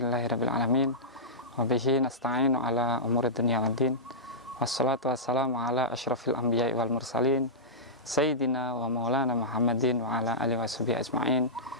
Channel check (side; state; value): both; normal; correlation -0.15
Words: alamin. Wa bihi nasta'inu ala umuri dunya waddin. Wassalatu wassalamu ala asyrafil anbiya'i wal mursalin sayyidina wa maulana Muhammadin wa ala alihi washabihi ajma'in.